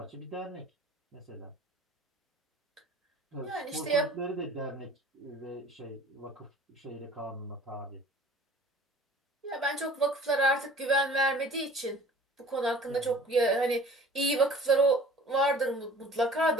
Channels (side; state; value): both; normal; correlation 0.48